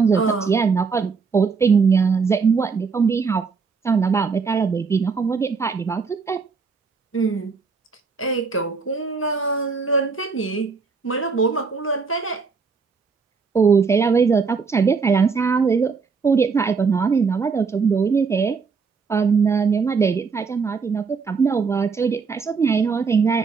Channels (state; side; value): quieter; left; 5.1 dB